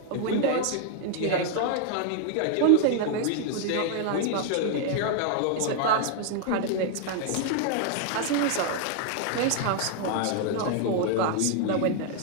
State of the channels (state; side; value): different; both; correlation 0.00